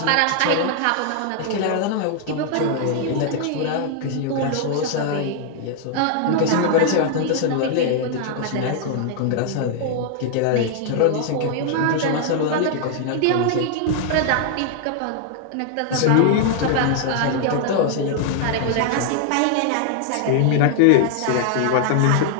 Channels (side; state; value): both; different; correlation 0.00